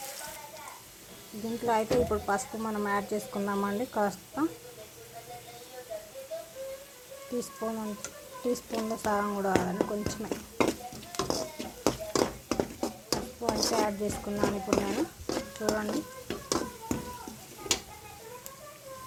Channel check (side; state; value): both; identical; correlation 1.00